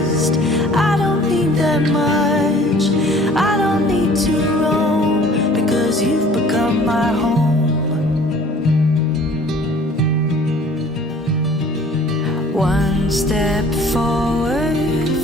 I don't need that much. I don't need to roam, because you've become my home. One step forward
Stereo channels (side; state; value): both; normal; correlation 0.51